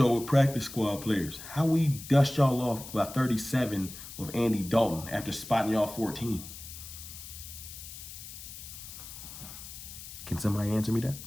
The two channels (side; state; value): left; noise; hiss, 13 dB below the sound